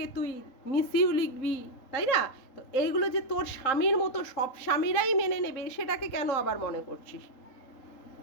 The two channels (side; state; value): right; late; 3.8 ms